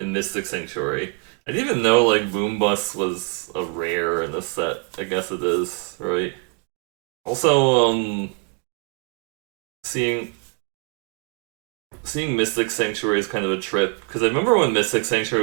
Mystic Sanctuary. I didn't even know like Boom Bust was a rare in this set. I guess it is, right? Also, seeing Mystic Sanctuary is kind of a trip because I remember when Mystic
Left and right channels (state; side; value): quieter; left; 35.3 dB